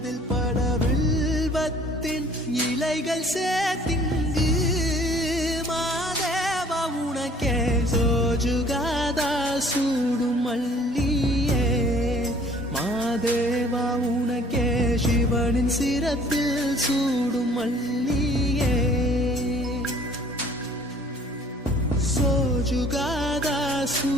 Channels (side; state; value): both; normal; correlation 0.55